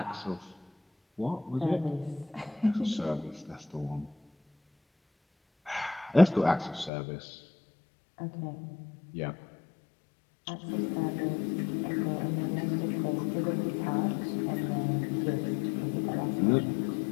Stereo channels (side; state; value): right; drops out; at 6.9 s